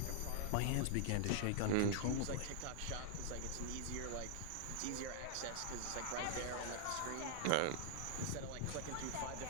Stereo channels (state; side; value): different; both; correlation 0.00